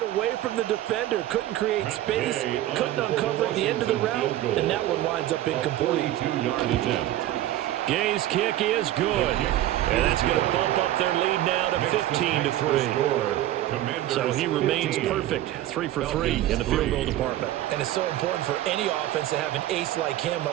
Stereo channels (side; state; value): left; quieter; 14.0 dB